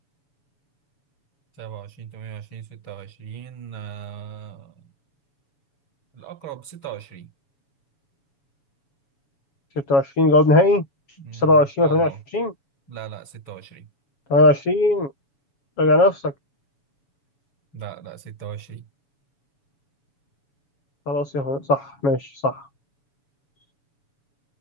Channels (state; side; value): late; right; 7.3 ms